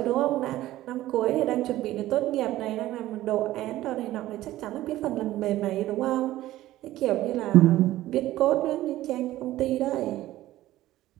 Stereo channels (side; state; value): left; quieter; 15.2 dB